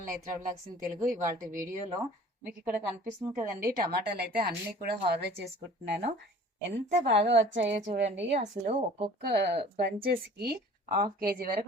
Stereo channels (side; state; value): both; normal; correlation 0.47